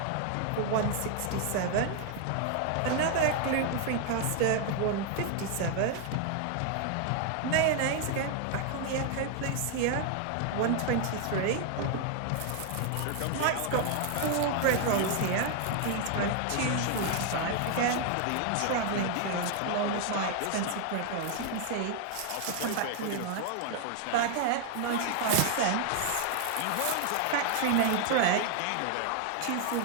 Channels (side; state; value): both; different; correlation 0.00